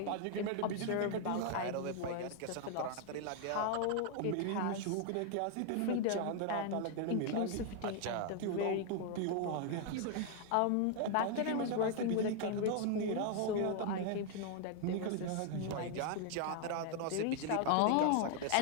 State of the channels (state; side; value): different; both; correlation 0.00